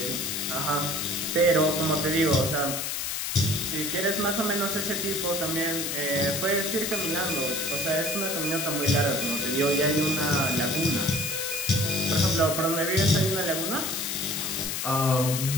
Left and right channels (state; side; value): noise; left; hiss, 2 dB below the sound